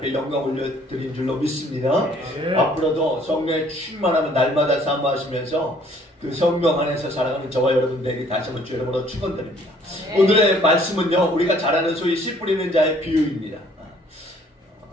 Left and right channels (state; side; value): normal; both; correlation 0.60